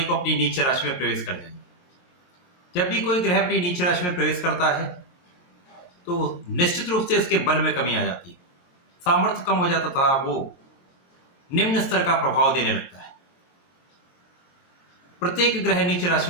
को अपनी नीच राशि में प्रवेश कर जाएंगे। जब भी कोई ग्रह अपनी नीच राशि में प्रवेश करता है तो निश्चित रूप से इसके बल में कमी आ जाती है, सामर्थ्य कम हो जाता था, वो निम्न स्तर का प्रभाव देने लगता है। प्रत्येक ग्रह नीच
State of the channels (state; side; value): late; right; 22 ms